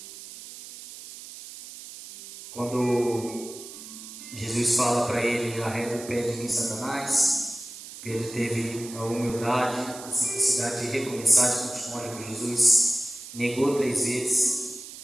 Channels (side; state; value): right; noise; hiss, 14 dB below the sound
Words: Quando Jesus fala para ele: arreda o pé de mim, Satanás, Pedro teve a humildade, a simplicidade de recomeçar, de continuar com Jesus. Negou 3 vezes.